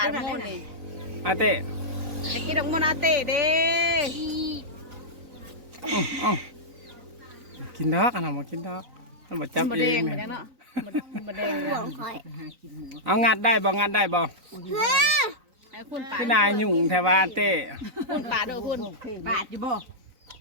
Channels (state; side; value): late; left; 3.9 ms